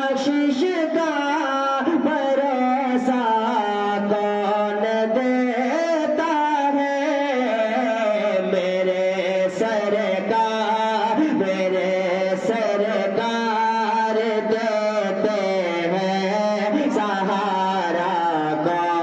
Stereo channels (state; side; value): identical; both; correlation 1.00